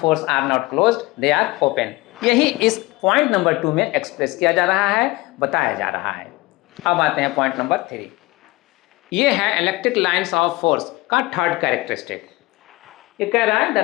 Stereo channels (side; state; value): right; quieter; 21.3 dB